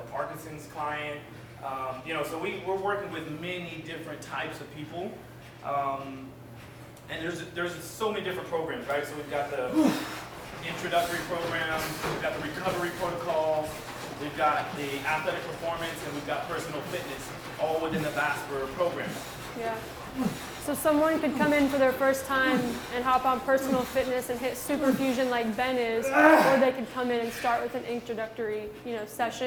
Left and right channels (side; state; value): both; identical; correlation 1.00